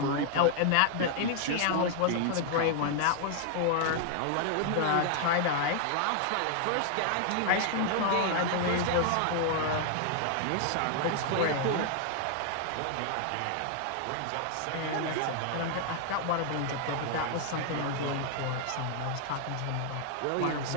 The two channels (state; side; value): different; both; correlation 0.00